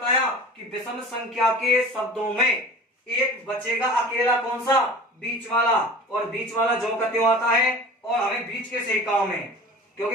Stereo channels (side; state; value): both; normal; correlation 0.39